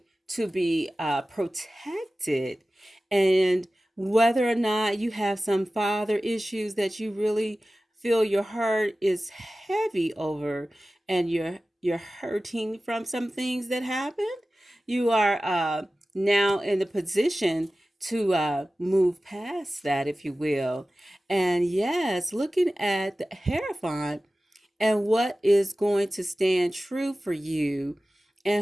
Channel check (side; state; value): both; normal; correlation 0.96